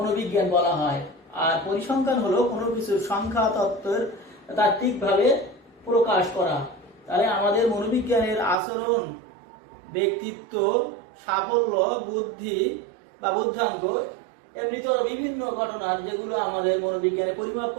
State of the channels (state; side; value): drops out; left; at 8.6 s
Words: বলা হয়। আর পরিসংখ্যান হলো কোনো কিছুর সংখ্যা তত্ত্বের তাত্ত্বিকভাবে প্রকাশ করা। তাহলে আমাদের মনোবিজ্ঞানের আচরণ, ব্যক্তিত্ব, সাফল্য, বুদ্ধি বা বুদ্ধাঙ্ক, এমনিতে বিভিন্ন ঘটনার যেগুলো আমাদের মনোবিজ্ঞানে পরিমাপ